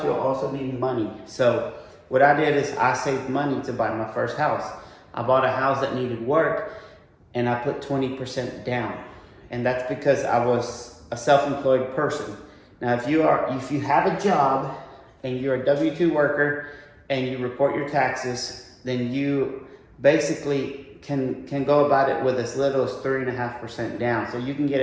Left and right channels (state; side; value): identical; both; correlation 1.00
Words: you'll also need money. So what I did is I saved money to buy my first house. I bought a house that needed work, and I put 20% down. And that's because I was a self-employed person. Now, if you have a job and you're a W-2 worker and you report your taxes, then you basically can go about it with as little as 3.5% down. So you can get